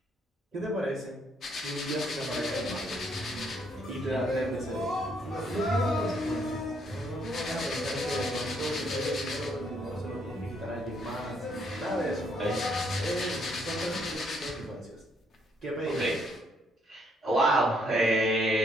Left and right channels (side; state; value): both; normal; correlation 0.70